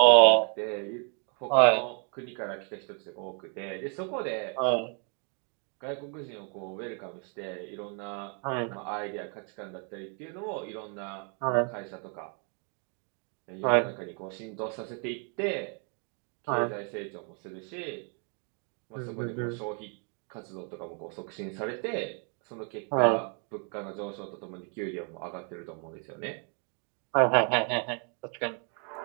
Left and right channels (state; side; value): quieter; left; 39.8 dB